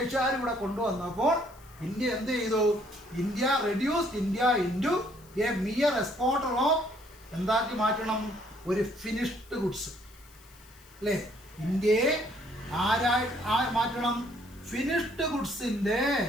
ഇവിടെ കൊണ്ടുവന്നപ്പോൾ ഇന്ത്യ എന്ത് ചെയ്തു? India reduced India into A mere exporter of എന്താക്കി മാറ്റണം? ഒരു ഫിനിഷ്ഡ് ഗുഡ്സ് അല്ലേ? ഇന്ത്യയെ മാറ്റണം? ഫിനിഷ്ഡ് ഗുഡ്സിൻ്റെ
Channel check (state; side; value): noise; left; hiss, 26 dB below the sound